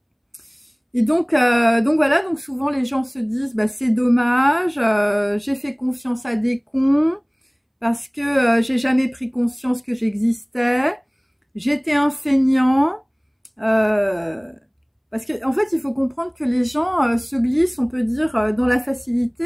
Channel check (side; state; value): both; identical; correlation 1.00